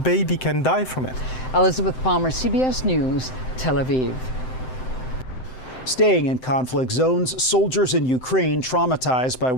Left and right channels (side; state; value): right; late; 7.8 ms